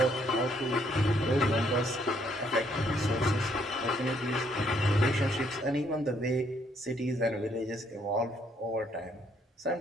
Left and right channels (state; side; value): normal; both; correlation 0.69